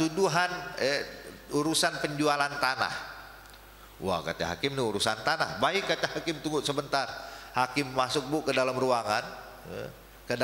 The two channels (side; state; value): both; identical; correlation 1.00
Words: urusan penjualan tanah. Wah kata hakim, ini urusan tanah. Baik kata hakim, tunggu sebentar. Hakim masuk bu ke dalam ruangan, ke